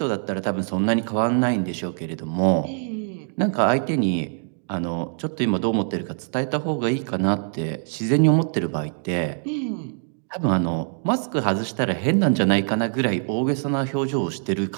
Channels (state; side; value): silent; left; 63 dB below the other